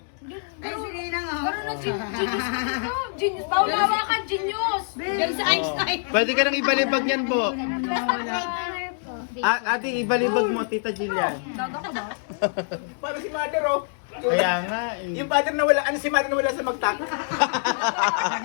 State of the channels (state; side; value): silent; right; 62 dB below the other